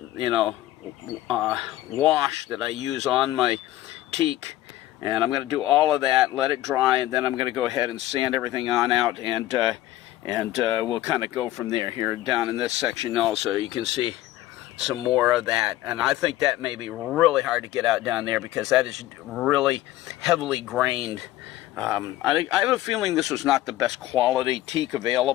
wash that I use on my teak, and I'm going to do all of that, let it dry, and then I'm going to go ahead and sand everything on out, and we'll kind of go from there. Here down in this section also, you can see some more of that, and I think that may be really hard to get out down there because that is really heavily grained. I have a feeling this was not the best quality teak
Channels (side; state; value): right; quieter; 15.2 dB